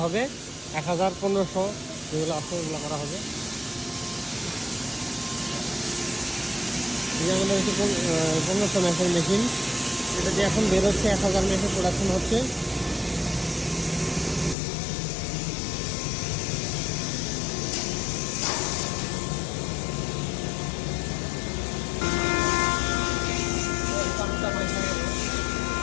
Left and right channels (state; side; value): drops out; right; at 14.6 s